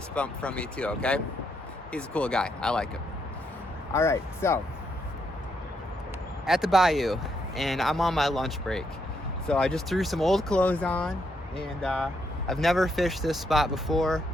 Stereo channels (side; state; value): both; normal; correlation 0.77